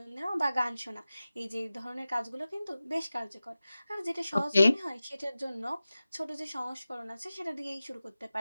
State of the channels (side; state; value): both; inverted; correlation -0.95